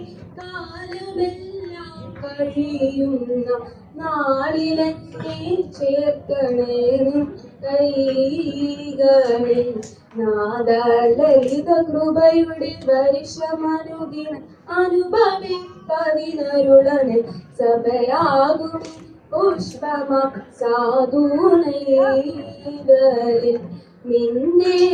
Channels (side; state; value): both; identical; correlation 1.00